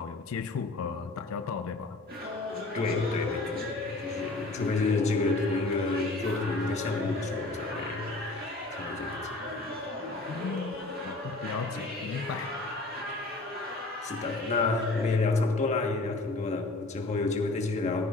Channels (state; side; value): quieter; right; 3.1 dB